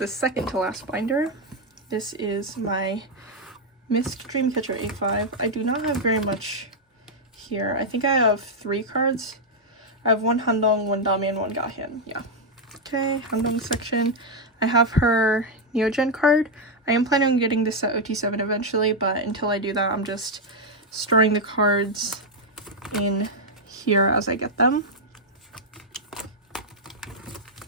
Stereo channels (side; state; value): both; normal; correlation 0.00